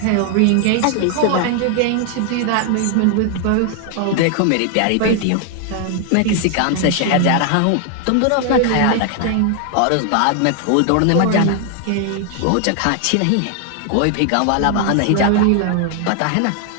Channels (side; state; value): both; different; correlation 0.00